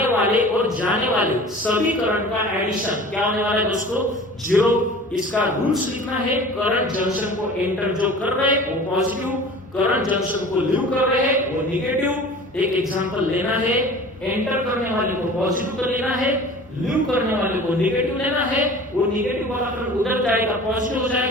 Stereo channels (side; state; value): both; normal; correlation 0.41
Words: वाले और जाने वाले सभी करंट का एडिशन क्या होने वाला है दोस्तों? 0। इसका रूल्स लिखना है, करंट जंक्शन को एंटर जो कर रहे हैं वो पॉजिटिव, करंट जंक्शन को लीव कर रहे हैं वो नेगेटिव। एक एग्जांपल लेना है, एंटर करने वाले को पॉजिटिव कर लेना है, लीव करने वाले को नेगेटिव लेना है, वो नेगेटिव वाला करंट उधर जाएगा पॉजिटिव हो